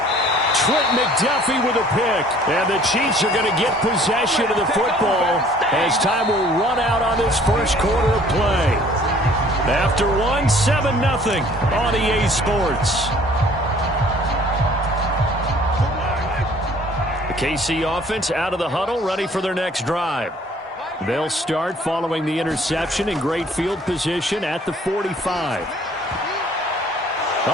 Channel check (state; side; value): normal; both; correlation 0.55